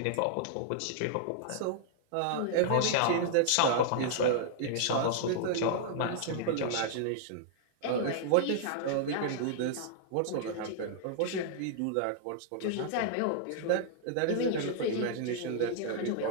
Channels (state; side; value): different; both; correlation -0.01